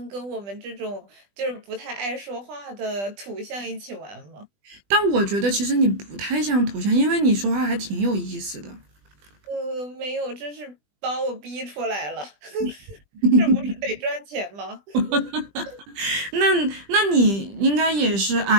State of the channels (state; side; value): late; left; 20 ms